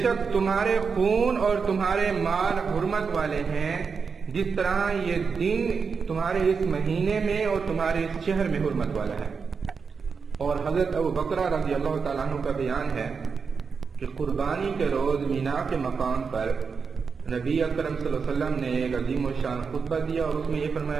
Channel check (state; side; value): quieter; left; 5.5 dB